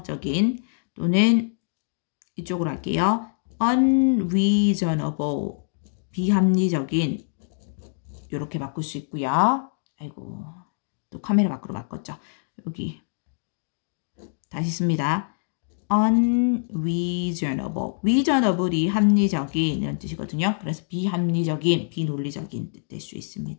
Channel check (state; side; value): silent; right; digital silence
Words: 또는 이쪽으로 할게요. unreasonable 비합리적인 이렇게 바꿀 수 있고요. 아이고 또 카메라 밖으로 바꿨죠. 여기 다시 씁니다. unreasonable. reasonable이 합리적인 이런 뜻이거든요. 그래서 비합리적인, 비논리적인 뜻 될 수